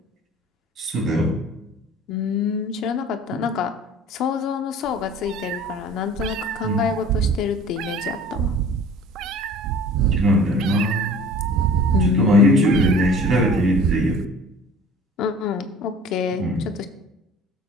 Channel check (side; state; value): both; normal; correlation 0.46